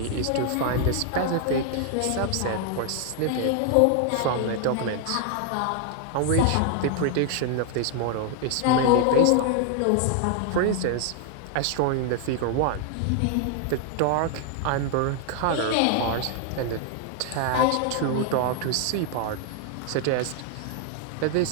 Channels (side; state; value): both; different; correlation 0.00